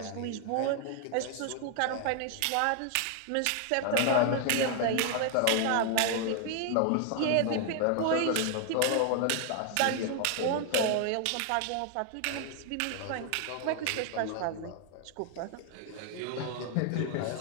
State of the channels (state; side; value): different; both; correlation 0.00